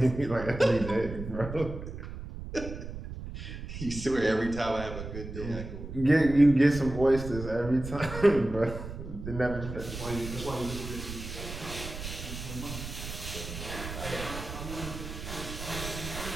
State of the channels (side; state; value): right; noise; rumble, 9 dB below the sound